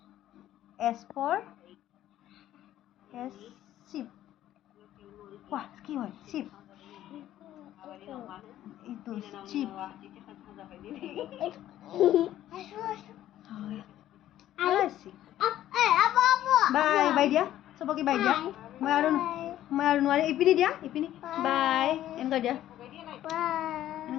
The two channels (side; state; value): right; quieter; 12.8 dB